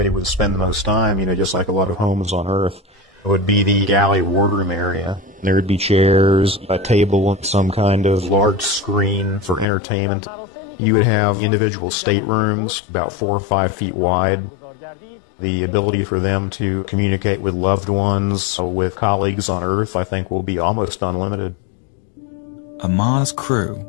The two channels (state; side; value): drops out; right; at 9.7 s